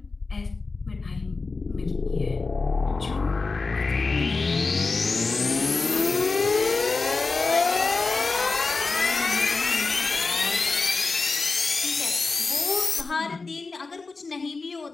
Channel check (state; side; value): quieter; right; 4.0 dB